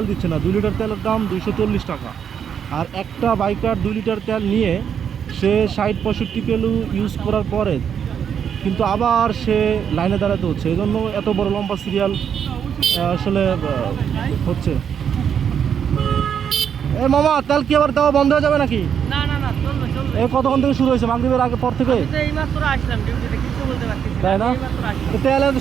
দিচ্ছে না। 2 লিটার তেলের দাম 240 টাকা, আর একটা বাইকার 2 লিটার তেল নিয়ে সে 60-65 কিলো ইউজ করার পরে কিন্তু আবার সে লাইনে দাঁড়াতে হচ্ছে। এই জন্য এত বড় লম্বা সিরিয়াল আসলে হচ্ছে। এ মামা, তেল কি আবার দেওয়া বন্ধ হয়ে যাবে নাকি? না না না, চলবে চলবে। এই কতক্ষণ থেকে শুরু হয়েছে? মাগরিবের আগে পর থেকে? এইমাত্র আসলাম ডিউটিতে, কিছু বলতে পারছি না। তাই না? এইমাত্র আসলাম। তো তেলের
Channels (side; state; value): left; quieter; 8.0 dB